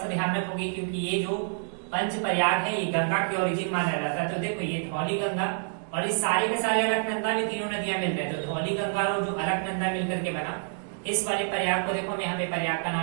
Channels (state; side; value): silent; left; digital silence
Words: ध्यान रखोगे क्योंकि ये जो पंच प्रयाग है ये गंगा की ओरिजिन माना जाता है। तो देखो ये धौली गंगा और इस सारे के सारे अलकनंदा में तीनों नदियां मिल रहे हैं, तो धौली गंगा और जो अलकनंदा मिलकर के बना इस वाले प्रयाग को देखो हम यहाँ पे प्रयाग का